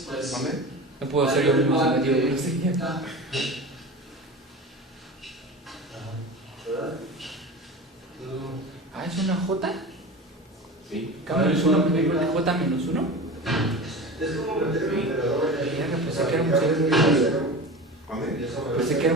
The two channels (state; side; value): normal; both; correlation 0.31